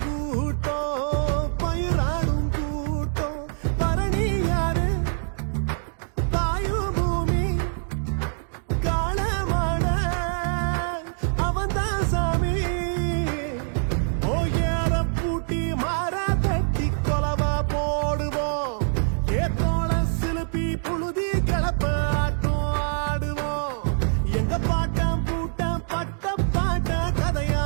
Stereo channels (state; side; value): silent; left; digital silence